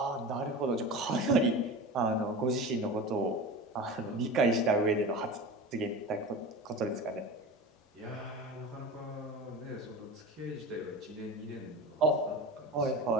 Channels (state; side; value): normal; both; correlation 0.31